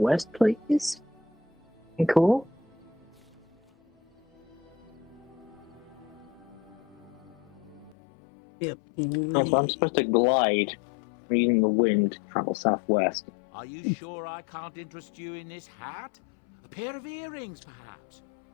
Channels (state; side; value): drops out; right; at 8.0 s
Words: please. Cool. Yep. So I'm supposed to glide using the wind, travel southwest. Are you sure I can't interest you in this hat? A pair of earrings, perhaps?